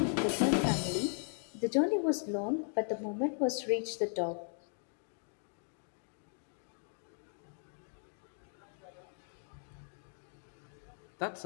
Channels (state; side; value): silent; right; 53 dB below the other